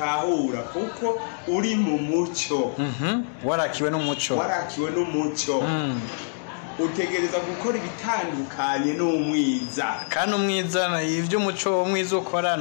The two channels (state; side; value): silent; right; digital silence